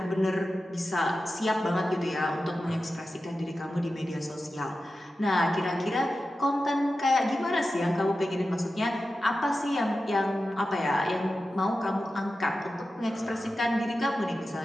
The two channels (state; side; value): normal; both; correlation 0.93